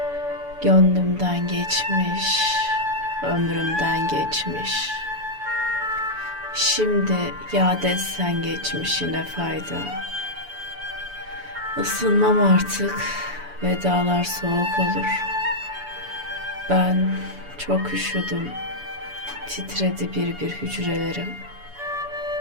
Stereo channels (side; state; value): left; late; 7.0 ms